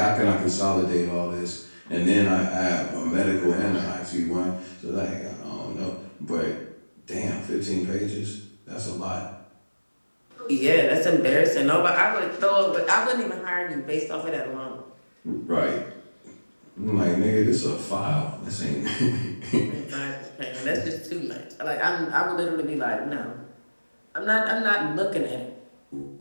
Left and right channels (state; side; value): inverted; both; correlation -1.00